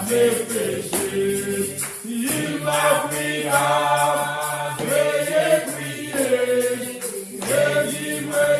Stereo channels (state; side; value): identical; both; correlation 1.00